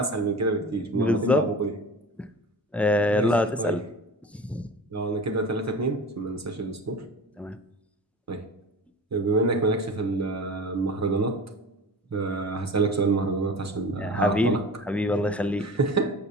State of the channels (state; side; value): normal; both; correlation 0.36